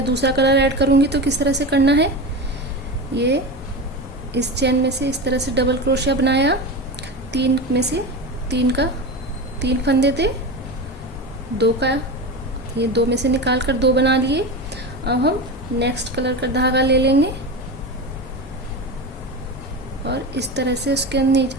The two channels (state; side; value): normal; both; correlation 0.24